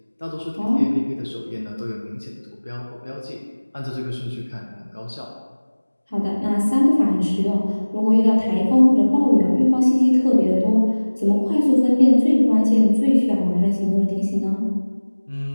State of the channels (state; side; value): inverted; both; correlation -1.00